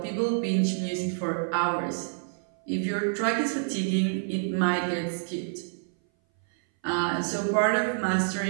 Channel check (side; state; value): left; silent; 58 dB below the other